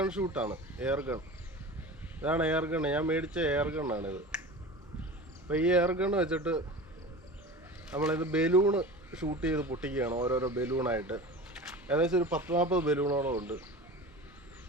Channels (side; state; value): both; normal; correlation 0.34